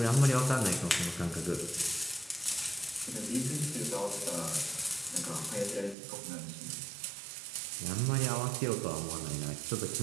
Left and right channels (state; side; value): drops out; left; at 6.0 s